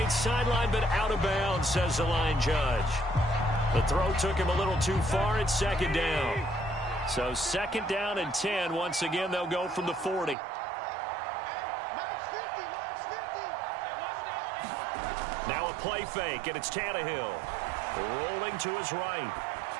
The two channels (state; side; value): drops out; left; at 10.4 s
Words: sideline, but out of bounds, says the line judge. The throw took him a little too far. It's second down. So 2nd down and 10. Once again, they'll go from the 40. Now a play fake, and it's Tannehill. Rolling to his right.